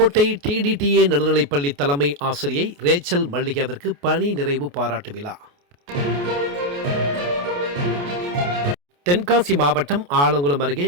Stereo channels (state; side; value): late; left; 28 ms